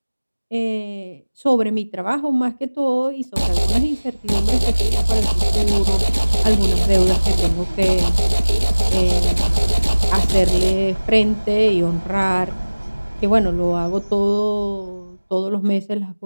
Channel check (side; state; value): both; inverted; correlation -1.00